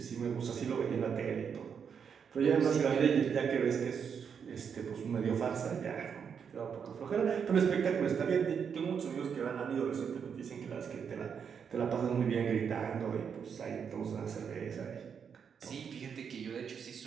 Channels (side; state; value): left; quieter; 7.0 dB